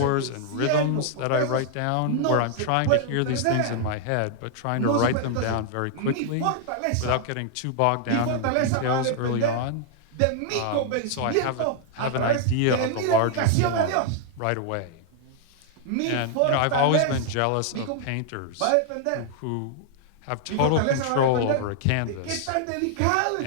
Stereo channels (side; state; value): both; different; correlation 0.00